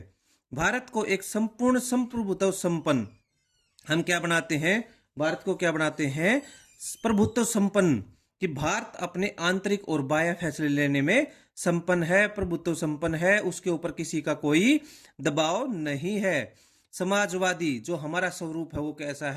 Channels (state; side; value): identical; both; correlation 1.00